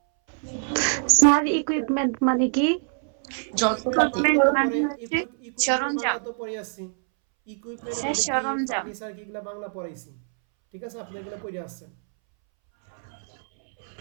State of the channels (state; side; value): silent; left; 62 dB below the other